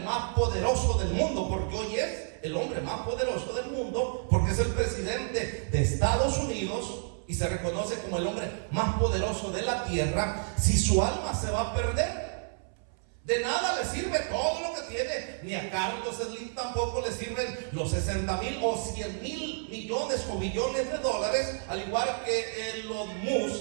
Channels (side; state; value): left; silent; 58 dB below the other